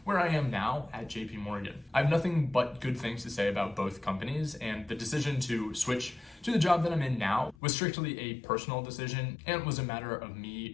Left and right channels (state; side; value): drops out; right; at 7.6 s